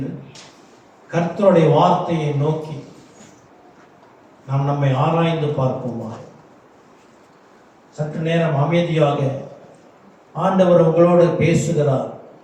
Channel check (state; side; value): identical; both; correlation 1.00